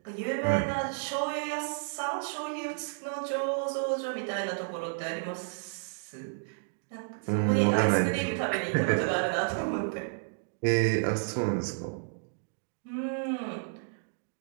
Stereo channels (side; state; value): left; silent; digital silence